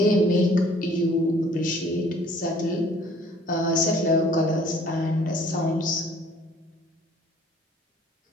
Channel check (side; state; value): both; normal; correlation 0.56